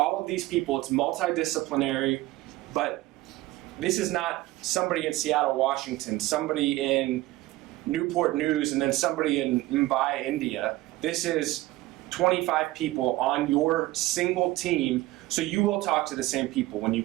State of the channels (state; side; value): quieter; left; 17.9 dB